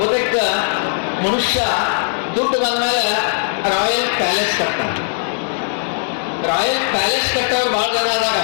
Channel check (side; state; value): right; silent; digital silence